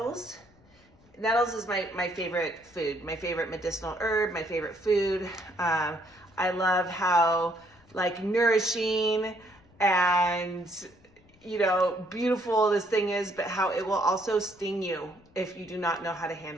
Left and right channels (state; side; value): noise; left; rumble, 29 dB below the sound